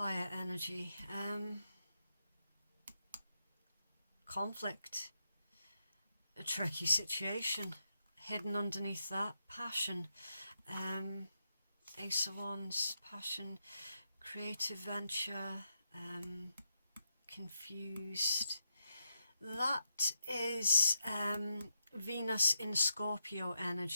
energy. Conflict. A tricky situation. Hidden underneath that, passion. Ace of Wands, passion, creative venture, confused. That is Venus in Scorpio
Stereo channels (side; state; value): both; inverted; correlation -0.83